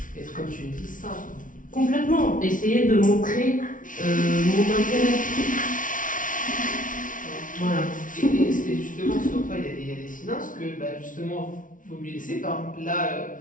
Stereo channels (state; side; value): late; right; 0.38 ms